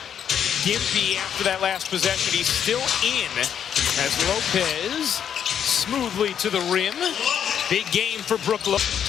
gimpy after that last possession. He's still in as Lopez smoothly to the rim. Big game for Brooklyn.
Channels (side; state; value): right; quieter; 8.7 dB